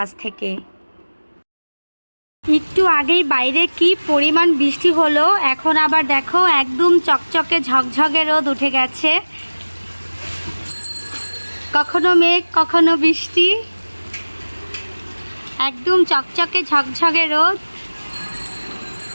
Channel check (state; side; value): inverted; both; correlation -1.00